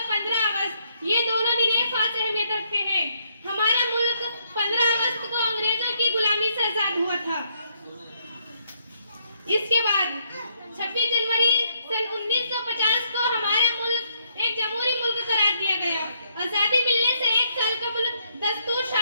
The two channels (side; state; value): both; inverted; correlation -0.73